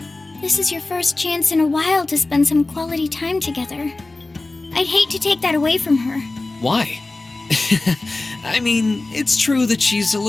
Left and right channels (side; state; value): right; quieter; 3.1 dB